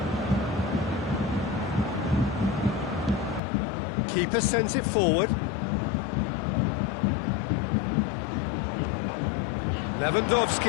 Keeper sends it forward.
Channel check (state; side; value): drops out; right; at 3.4 s